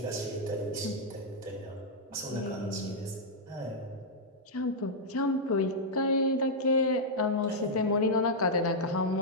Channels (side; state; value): both; normal; correlation -0.06